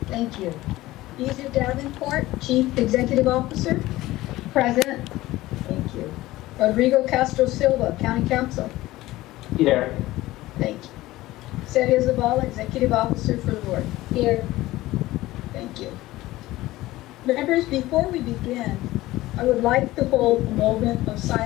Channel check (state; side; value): quieter; right; 17.4 dB